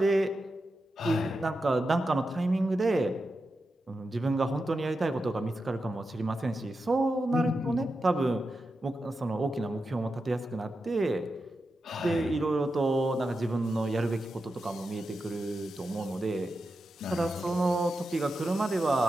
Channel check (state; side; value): normal; both; correlation 0.89